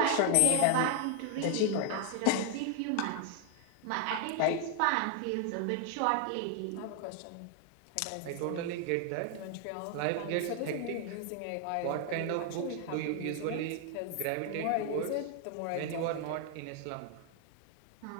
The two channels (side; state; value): both; different; correlation 0.00